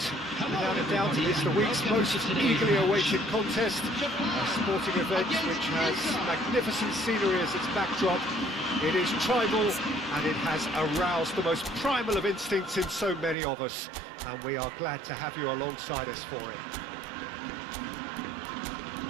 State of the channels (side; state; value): left; drops out; at 13.4 s